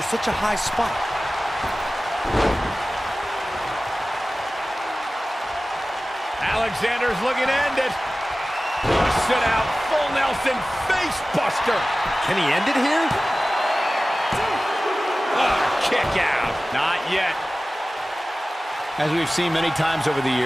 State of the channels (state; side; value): normal; both; correlation 0.97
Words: a high spot? Alexander's looking to end it. Sit out, full Nelson, face buster. Can he end it here? Kick out. Not yet. As we've seen many times over the